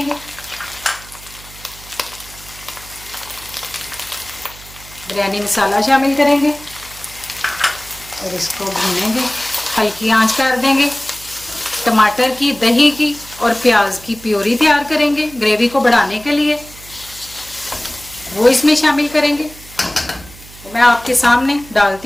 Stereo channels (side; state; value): right; noise; hum, 19 dB below the sound